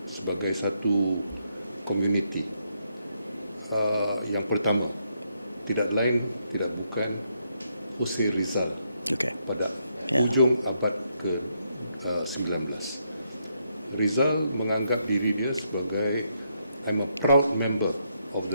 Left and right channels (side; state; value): both; inverted; correlation -0.77